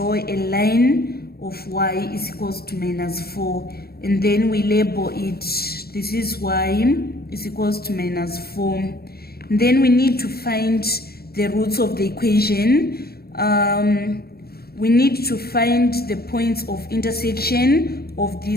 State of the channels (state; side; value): late; right; 0.45 ms